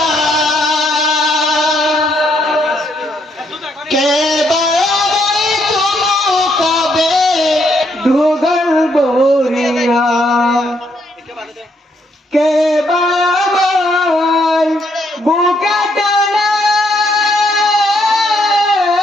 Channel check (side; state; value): both; normal; correlation 0.73